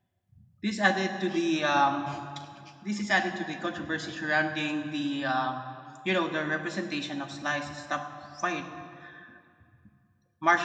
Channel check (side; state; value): both; identical; correlation 1.00